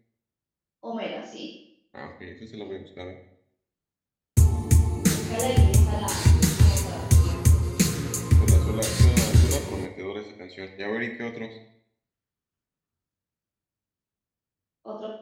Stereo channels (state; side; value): identical; both; correlation 1.00